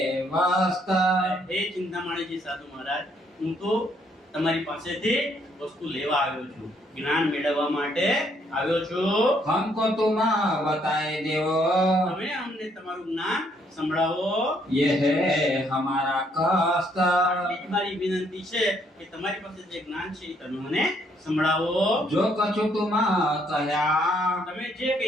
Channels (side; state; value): both; normal; correlation 0.69